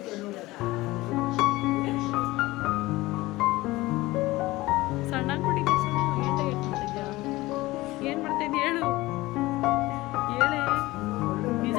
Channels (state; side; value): quieter; right; 19.2 dB